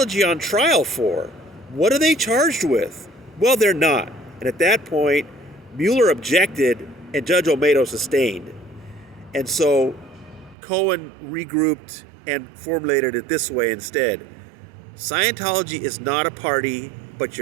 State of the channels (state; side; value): drops out; left; at 10.6 s